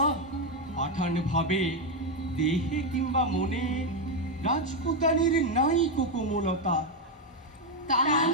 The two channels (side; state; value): both; normal; correlation 0.06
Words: পাঠান ভাবে দেহে কিংবা মনে রাজপুতানির নাই কো কোমলতা। তান